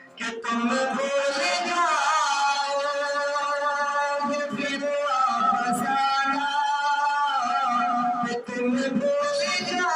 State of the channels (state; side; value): identical; both; correlation 1.00